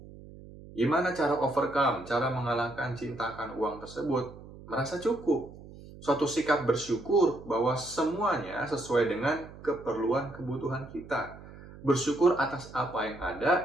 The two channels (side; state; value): right; noise; hum, 17 dB below the sound